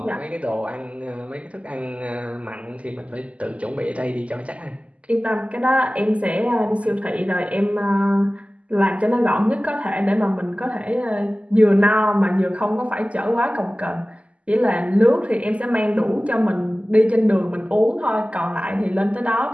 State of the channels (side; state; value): left; late; 0.065 ms